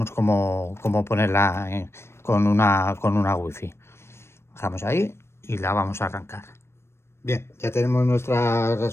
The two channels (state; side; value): late; right; 0.12 ms